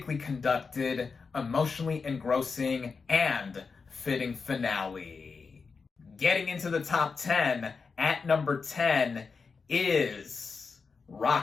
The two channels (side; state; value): right; quieter; 5.0 dB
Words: conducted, emotionally engrossing, and fitting finale. Getting into the top 10, at number 10 is